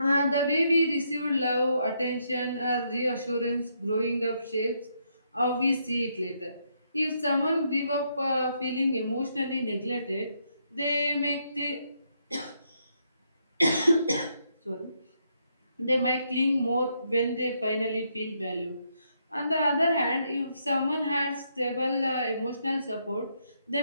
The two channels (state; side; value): inverted; both; correlation -0.76